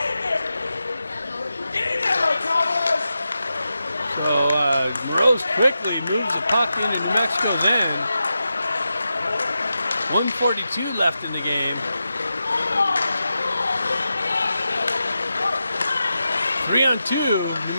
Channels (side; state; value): both; inverted; correlation -0.90